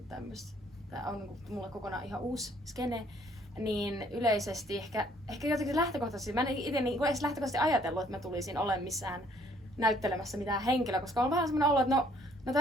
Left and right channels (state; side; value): normal; both; correlation 0.62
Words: tämmöistä. Tää on niinku mulle kokonaan ihan uusi skene. Niin yleisesti ehkä jotenkin lähtökohtaisesti, mä en itse niinku edes lähtökohtaisesti ajatellut, että mä tulisin olemaan missään näyttelemässä mitään henkilöä, koska on vähän semmoinen olo, että no